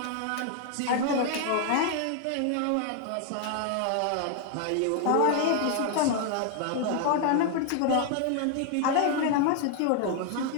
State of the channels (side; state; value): both; different; correlation 0.00